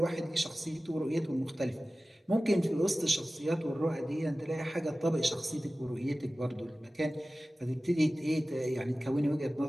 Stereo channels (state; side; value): normal; both; correlation 0.96